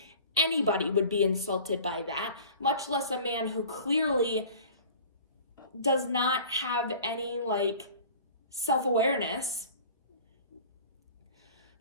Anybody would be insulted by that, much less a man who clearly does not have any, like, self-awareness.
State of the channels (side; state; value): both; inverted; correlation -0.44